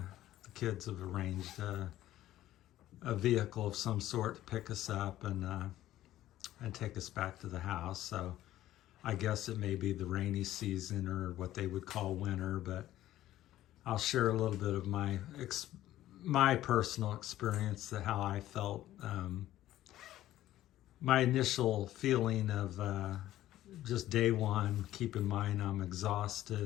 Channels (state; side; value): quieter; right; 14.0 dB